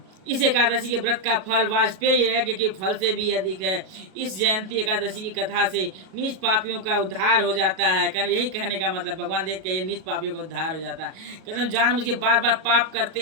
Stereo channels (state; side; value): late; left; 37 ms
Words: इस एकादशी के व्रत का फल वाजपेयी यज्ञ के फल से भी अधिक है। इस जयंती एकादशी की कथा से नीच पापियों का उद्धार हो जाता है। कारण यही कहने का मतलब भगवान देख के नीच पापियों का उद्धार हो जाता है। कहते जानबूझ के बार बार पाप करते